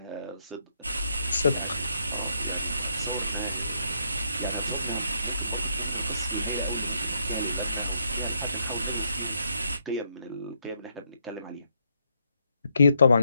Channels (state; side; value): inverted; both; correlation -0.76